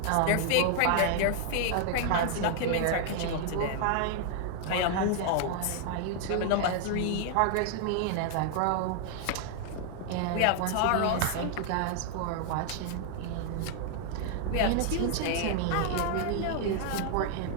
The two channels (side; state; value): both; different; correlation 0.00